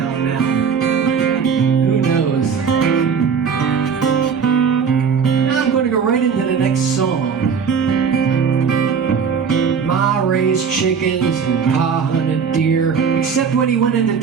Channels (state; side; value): quieter; left; 6.3 dB